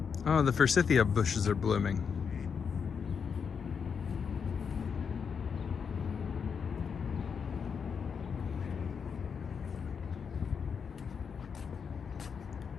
Oh, the forsythia bushes are blooming.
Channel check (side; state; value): right; quieter; 6.4 dB